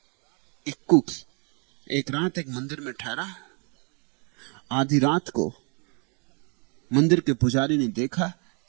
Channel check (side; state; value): left; quieter; 36.0 dB